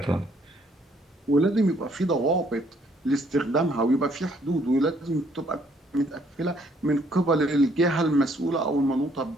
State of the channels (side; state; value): both; normal; correlation 0.66